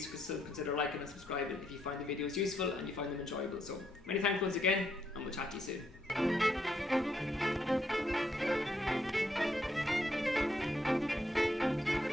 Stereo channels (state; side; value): normal; both; correlation 0.76